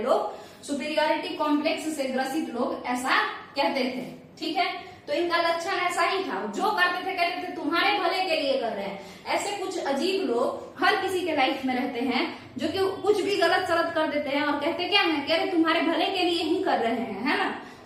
सुपीरियोरिटी कॉम्प्लेक्स से ग्रसित लोग ऐसा कहते थे। ठीक है, तो इनका लक्षण ऐसा ही था, जो करते थे कहते थे तुम्हारे भले के लिए कर रहे हैं। ऐसे कुछ अजीब लोग हर किसी के लाइफ में रहते हैं जो कि कुछ भी गलत सलत कर देते हैं और कहते क्या है, कह रहे तुम्हारे भले के लिए ही कर रहे हैं, है ना,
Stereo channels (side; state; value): both; identical; correlation 1.00